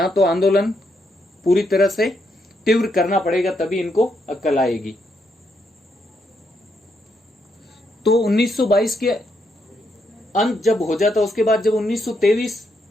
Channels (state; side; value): normal; both; correlation 0.78